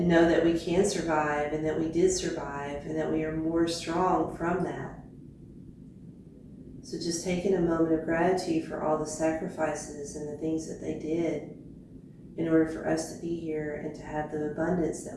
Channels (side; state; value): both; identical; correlation 1.00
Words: know that we can survive, and that we did survive, and that we are more strong from that. So just taking a moment of gratitude for all the sacrifices and the things that they did in order for us to be here and to have the abundance that